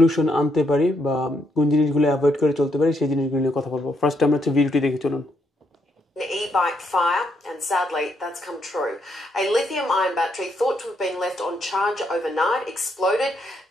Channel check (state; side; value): normal; both; correlation 0.76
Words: আনতে পারি বা কোন জিনিসগুলো অ্যাভয়েড করে চলতে পারি সেই জিনিসগুলো নিয়ে কথা বলবো। ফার্স্ট আমরা হচ্ছে ভিডিওটি দেখে চলুন। An e-bike fire, and sadly that's come true. A lithium-ion battery thought to have been left on charge overnight exploded,